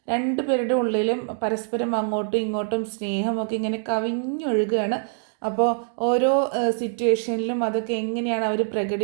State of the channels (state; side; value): silent; left; digital silence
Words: രണ്ടുപേരുടെ ഉള്ളിലും പരസ്പരം അങ്ങോട്ടും ഇങ്ങോട്ടും സ്നേഹമൊക്കെ ഇങ്ങനെ കവിഞ്ഞൊഴുകുകയാണ്. അപ്പോൾ ഓരോ സിറ്റുവേഷനിലും അതൊക്കെ എങ്ങനെയാണ് അവർ